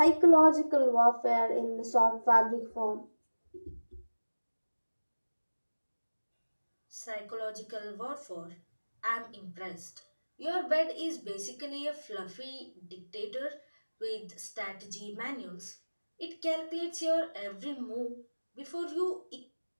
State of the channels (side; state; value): both; inverted; correlation -1.00